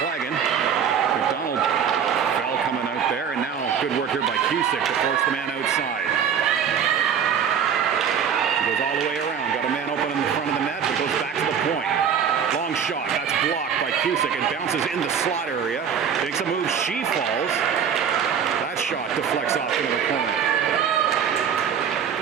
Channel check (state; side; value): quieter; left; 7.5 dB